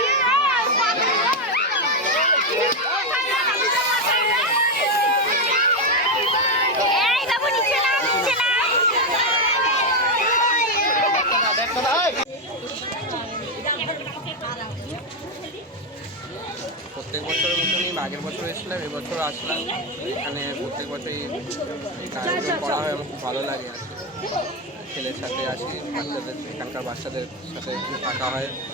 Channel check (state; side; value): normal; both; correlation 0.06